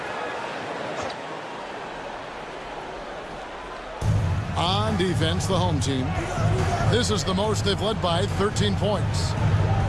on defense, the home team. This is the most they've led by 13 points.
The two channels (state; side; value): identical; both; correlation 1.00